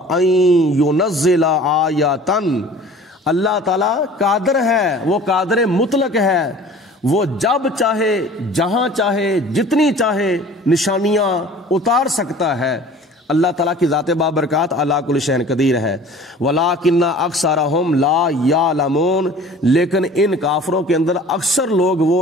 ان ینزل آیۃ، اللہ تعالیٰ قادر ہے، وہ قادر مطلق ہے، وہ جب چاہے جہاں چاہے جتنی چاہے نشانیاں اتار سکتا ہے۔ اللہ تعالیٰ کی ذات بابرکات علی کل شیء قدیر ہے۔ ولیکن اکثرہم لا یعلمون، لیکن ان کافروں کے اندر اکثر لوگ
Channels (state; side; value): normal; both; correlation 0.45